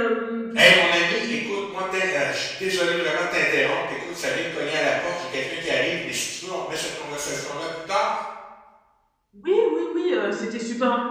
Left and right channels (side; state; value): both; identical; correlation 1.00